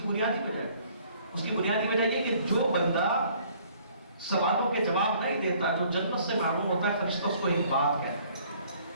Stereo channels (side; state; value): both; inverted; correlation -0.59